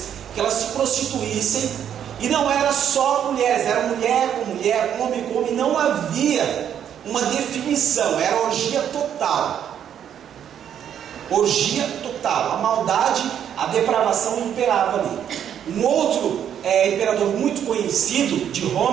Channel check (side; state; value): left; quieter; 9.3 dB